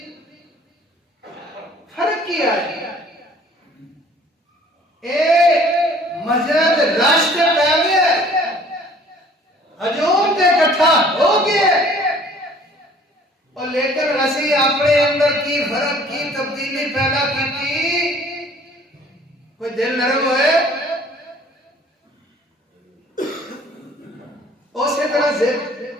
فرق کیا ہے؟ اے مسجد راشتے پہ گیا، ہجوم تے اکٹھا ہو گیا، اور لیکن اسی اپنے اندر کی فرق کی تبدیلی پیدا کی تھی، کوئی دل نرم ہوئے اسی طرح سے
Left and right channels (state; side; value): normal; both; correlation 0.54